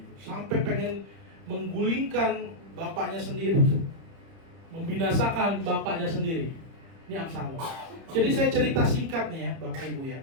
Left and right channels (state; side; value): late; left; 30 ms